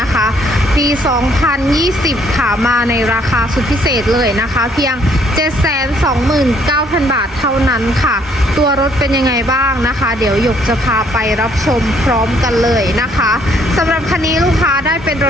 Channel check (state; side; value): normal; both; correlation 0.65